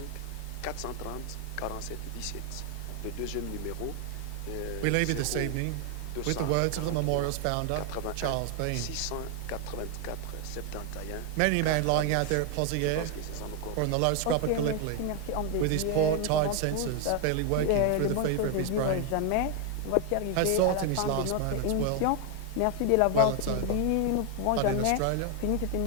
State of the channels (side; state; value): both; different; correlation 0.01